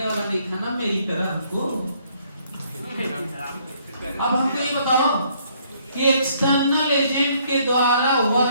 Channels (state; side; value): inverted; both; correlation -0.66